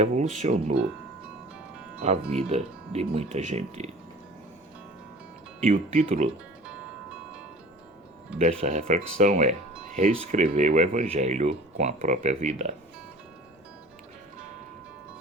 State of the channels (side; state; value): both; normal; correlation 0.43